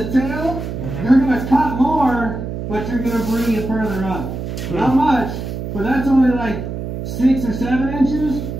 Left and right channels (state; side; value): noise; right; hum, 6 dB below the sound